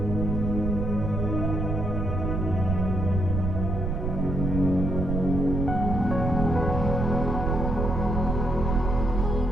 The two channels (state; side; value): noise; right; rumble, 1 dB below the sound